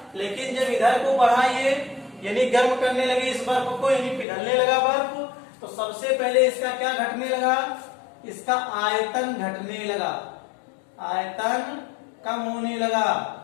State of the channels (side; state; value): right; drops out; at 4.2 s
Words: लेकिन जब इधर को बढ़ाइए यानी गर्म करने लगे इस बर्फ को, यानी पिघलने लगा बर्फ, तो सबसे पहले इसका क्या घटने लगा, इसका आयतन घटने लगा, आयतन कम होने लगा,